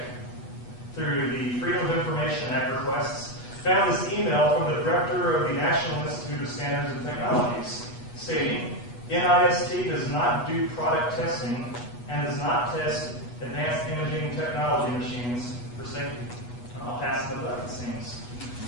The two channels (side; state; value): right; late; 8.3 ms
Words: through the Freedom of Information Act requests, found this email from the director of the National Institute of Standards and Technologies, stating, NIST does not do product testing and does not test advanced imaging technology machines for safety. I'll pass the buck, it seems.